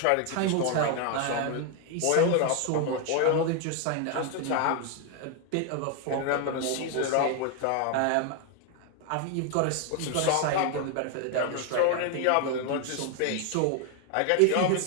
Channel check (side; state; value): both; different; correlation 0.01